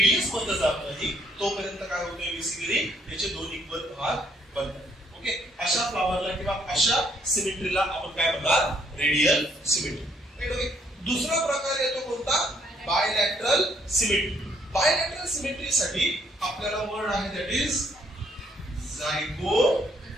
मध्ये जात नाही, तोपर्यंत काय होतंय? बेसिकली त्याचे 2 इक्वल भाग बनतात. ओके, अशा फ्लावरला किंवा अशा सिमेट्रीला आपण काय म्हणणार? Radial symmetry. राईट. ओके, दुसरा प्रकार येतो कोणता? Bilateral symmetry. बायलॅटरल सिमेट्रीसाठी आपल्याला वर्ड आहे, दॅट इज झायगोमॉर्फिक.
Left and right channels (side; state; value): both; normal; correlation 0.68